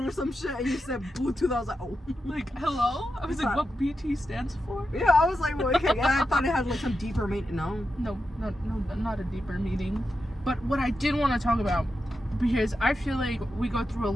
or some shit, and you said Bluetooth. I was like, oh. Like, hello? I was like, what BT stands for? Yeah, I was like, well, okay. I thought it had like some deeper meaning. No. No, not a deeper meaning. But what I did want to talk about, because I feel like we go through a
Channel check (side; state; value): both; normal; correlation 0.88